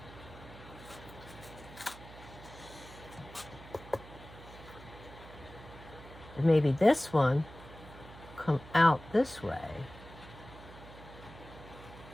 And maybe this one come out this way.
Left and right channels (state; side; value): noise; right; hum, 17 dB below the sound